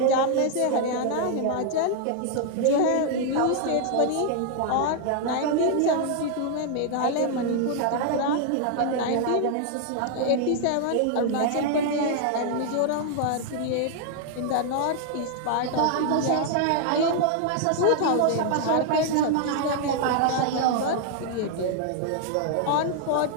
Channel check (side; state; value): both; different; correlation 0.00